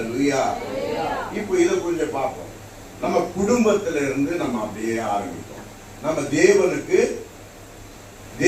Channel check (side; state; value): both; identical; correlation 1.00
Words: இப்போ இதை கொஞ்சம் பார்ப்போம். நம்ம குடும்பத்தில இருந்து நம்ம அப்படியே ஆரம்பிப்போம். நம்ம